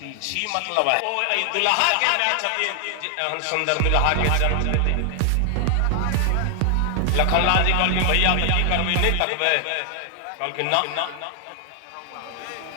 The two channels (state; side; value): different; both; correlation 0.00